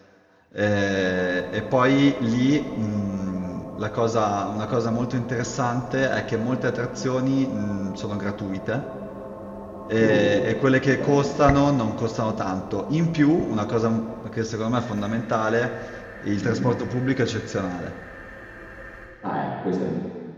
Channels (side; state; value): both; identical; correlation 1.00